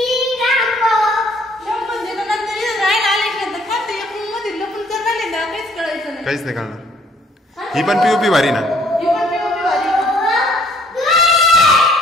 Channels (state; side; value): normal; both; correlation 0.61